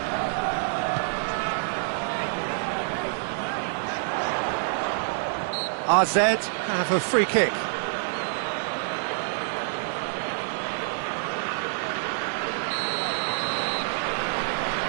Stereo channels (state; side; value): silent; left; digital silence